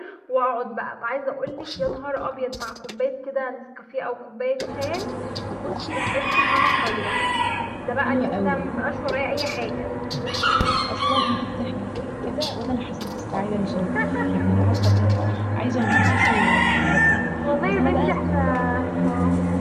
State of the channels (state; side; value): identical; both; correlation 1.00